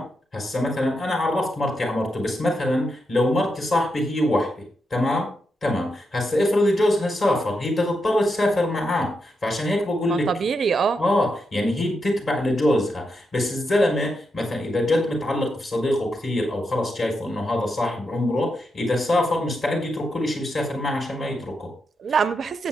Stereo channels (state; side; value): normal; both; correlation 0.84